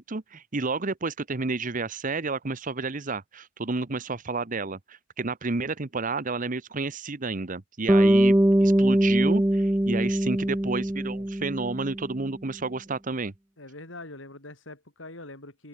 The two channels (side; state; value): both; normal; correlation 0.78